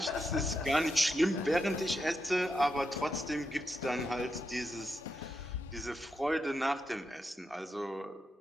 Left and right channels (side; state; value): both; normal; correlation 0.85